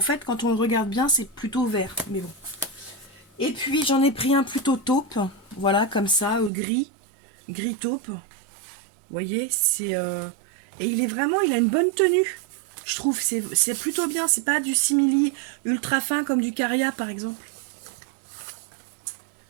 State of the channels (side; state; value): left; drops out; at 6.5 s